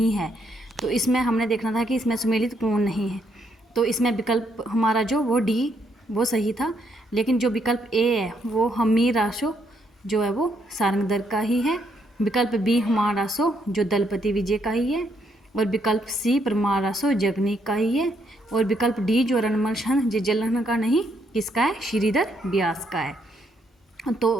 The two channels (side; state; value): both; normal; correlation 0.74